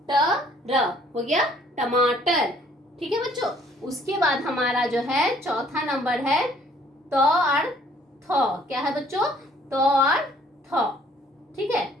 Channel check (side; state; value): both; normal; correlation 0.60